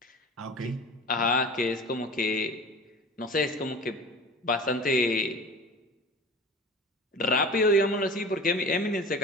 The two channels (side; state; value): both; normal; correlation 0.38